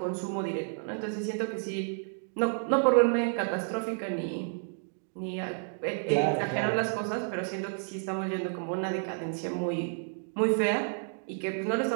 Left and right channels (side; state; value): left; silent; 57 dB below the other